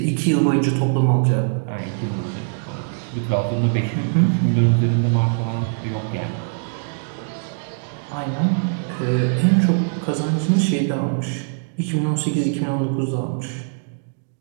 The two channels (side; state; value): left; silent; digital silence